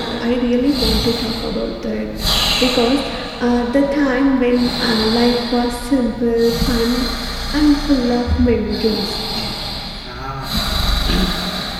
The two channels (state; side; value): identical; both; correlation 1.00